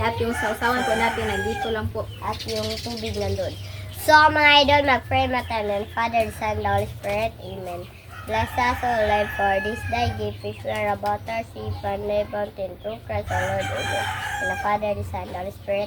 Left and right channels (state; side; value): identical; both; correlation 1.00